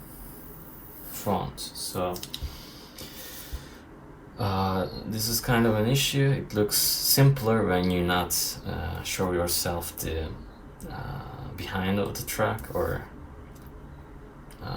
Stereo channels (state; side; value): identical; both; correlation 1.00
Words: front. So this is kind of an issue. It looks simpler when you not show yourself the behind of the truck, or